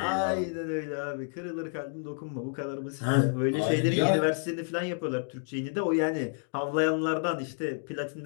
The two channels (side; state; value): right; silent; 58 dB below the other